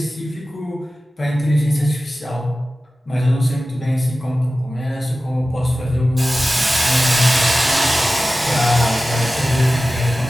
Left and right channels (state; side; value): normal; both; correlation 0.95